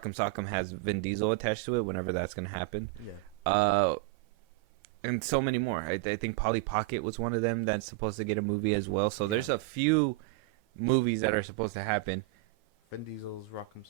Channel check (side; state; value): left; quieter; 20.5 dB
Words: Sock'em has Vin Diesel attached to it whenever that's going to happen. Yeah. And so many more. I think Polly Pocket was one of them that's supposed to get a movie as well. So there's a few movies that are supposed to happen. Vin Diesel's Rock'em